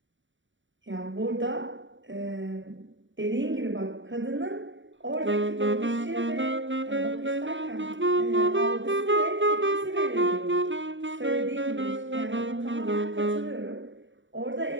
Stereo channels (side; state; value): left; late; 0.55 ms